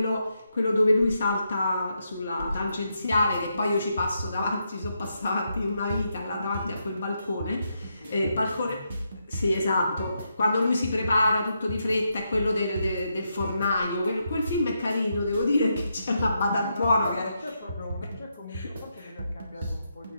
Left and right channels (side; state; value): both; inverted; correlation -0.82